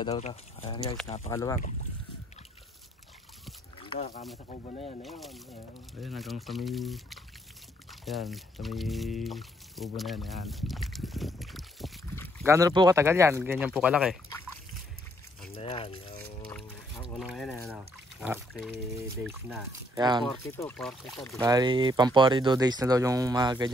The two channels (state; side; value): normal; both; correlation 0.69